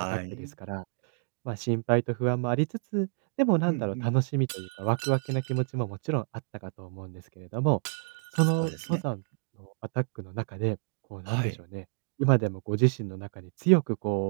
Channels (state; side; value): silent; left; 58 dB below the other